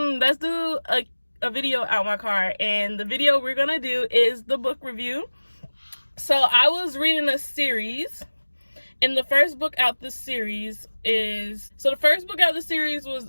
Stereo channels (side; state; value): both; inverted; correlation -1.00